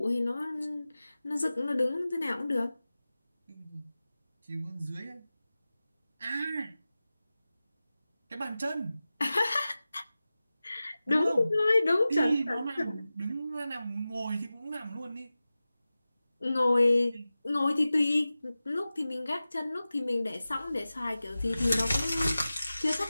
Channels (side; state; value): both; inverted; correlation -0.96